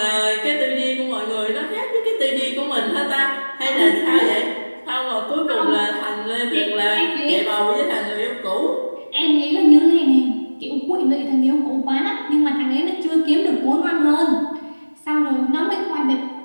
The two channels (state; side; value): inverted; both; correlation -1.00